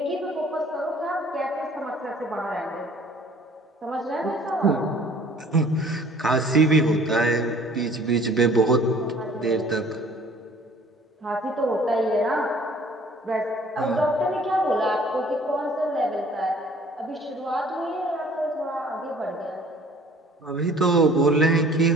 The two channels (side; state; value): both; normal; correlation 0.53